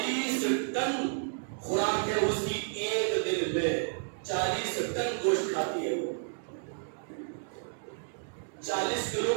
ٹن خوراک ہے اس کی، ایک دن میں 40 ٹن گوشت کھاتی ہے وہ۔ 40 کلو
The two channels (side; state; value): left; silent; digital silence